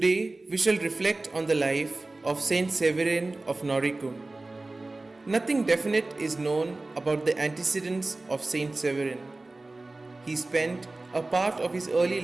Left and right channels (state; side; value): quieter; left; 3.1 dB